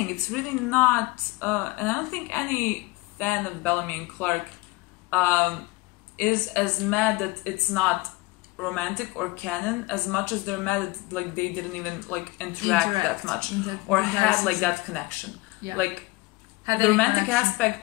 it's really not. And I don't think any fan of Bellamy and Clarke is as mad that it's not romantic or canon as much as they're mad that like they didn't even like interact that much or had like that connection. Yeah. Like. The romantic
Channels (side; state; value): right; quieter; 22.8 dB